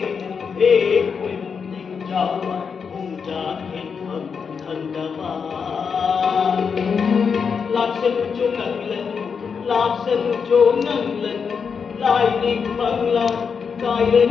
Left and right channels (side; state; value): right; quieter; 6.1 dB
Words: Laksan cho ngang lần lại định bằng lòng cài